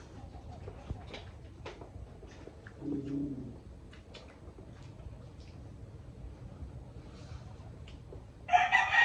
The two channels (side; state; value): both; identical; correlation 1.00